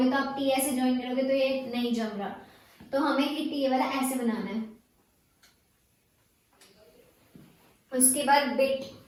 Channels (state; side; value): identical; both; correlation 1.00